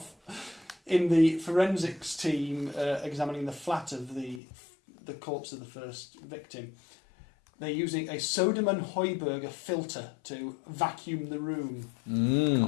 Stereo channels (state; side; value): drops out; right; at 4.4 s